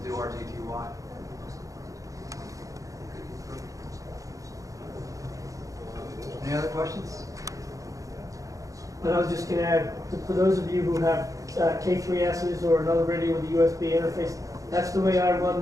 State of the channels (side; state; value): left; late; 0.16 ms